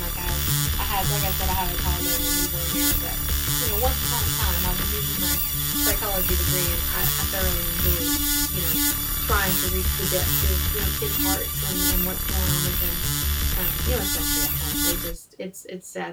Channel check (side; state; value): both; identical; correlation 1.00